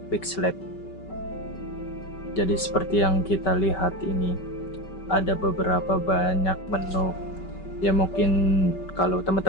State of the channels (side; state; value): right; late; 5.2 ms